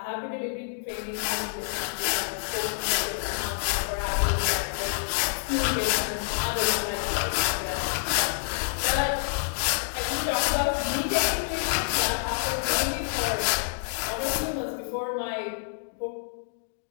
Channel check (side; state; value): right; silent; digital silence